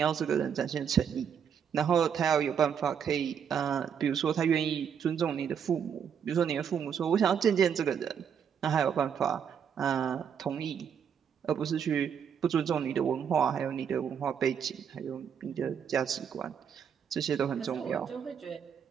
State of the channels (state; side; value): quieter; left; 7.7 dB